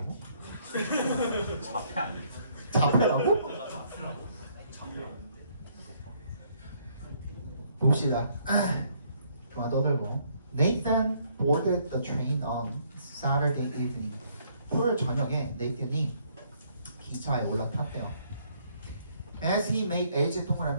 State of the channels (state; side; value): inverted; both; correlation -0.67